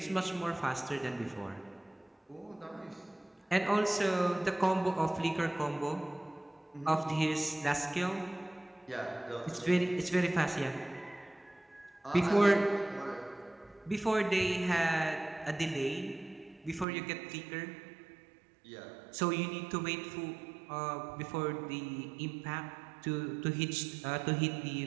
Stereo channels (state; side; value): drops out; left; at 16.9 s